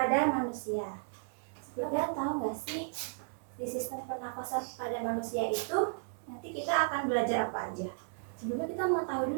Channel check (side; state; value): left; silent; digital silence